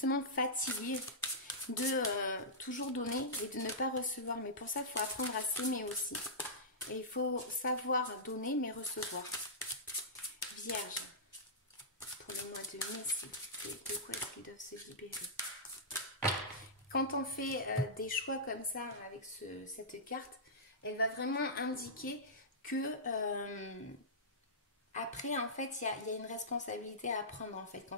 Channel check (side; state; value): both; normal; correlation -0.15